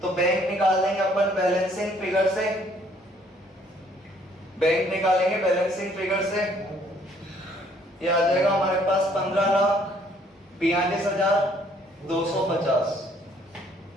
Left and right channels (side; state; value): both; normal; correlation 0.63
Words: तो बैंक निकाल देंगे अपन बैलेंसिंग फिगर से, बैंक निकालेंगे बैलेंसिंग फिगर से, ये आ जाएगा हमारे पास 15,42,250